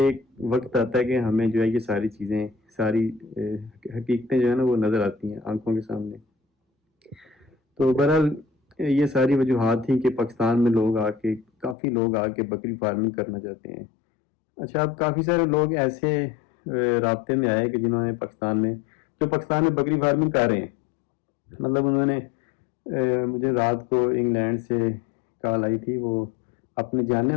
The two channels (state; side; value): drops out; right; at 11.8 s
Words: وقت آتا ہے کہ ہمیں جو ہے یہ ساری چیزیں، ساری حقیقتیں جو ہے نا وہ نظر آتی ہیں آنکھوں کے سامنے۔ تو بہرحال یہ ساری وجوہات تھیں کہ پاکستان میں کافی لوگ آ کے بکری فارمنگ کرنا چاہتے ہیں۔ اچھا، اب کافی سارے لوگ ایسے رابطے میں آئے کہ جنہوں نے پاکستان میں بکری فارمنگ کر رہے ہیں، مطلب انہوں نے مجھے رات کو انگلینڈ سے کال آئی تھی، وہ اپنے جاننے